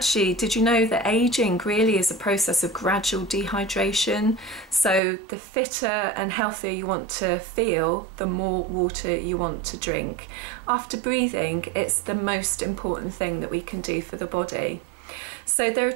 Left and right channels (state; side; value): drops out; left; at 5.0 s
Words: did you know that aging really is a process of gradual dehydration? So the fitter and healthier you want to feel, the more water you want to drink. After breathing, it's the most important thing that we can do for the body. So there are